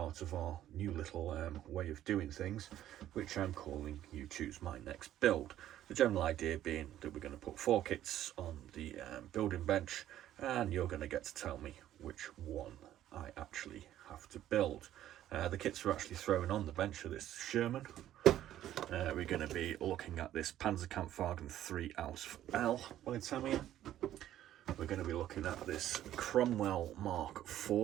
of our new little way of doing things, which I'm calling You Choose My Next Build. The general idea being that we're going to put 4 kits on the building bench and you're going to get to tell me which one I actually have to build. The kits are actually thrown on the bench of this Sherman. We're going to be looking at this Panzerkampfwagen 3 Ausf L by Tamiya. We're going to be looking at this Cromwell Mark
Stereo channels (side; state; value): left; quieter; 12.4 dB